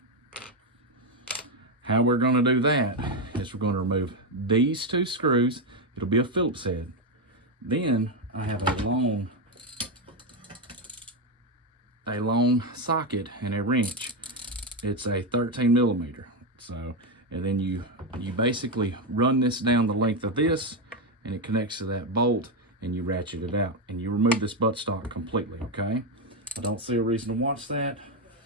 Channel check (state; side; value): normal; both; correlation 0.07